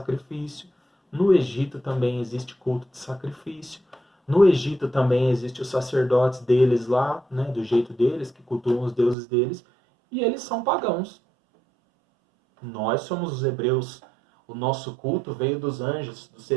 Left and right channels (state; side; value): drops out; left; at 9.2 s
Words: No Egito também existe culto de sacrifício. No Egito também existe os sacerdotes deles lá, né, do jeito deles, que cultuam os deuses deles, e eles são pagãos. Nós somos os hebreus. O nosso culto veio dos anjos, dos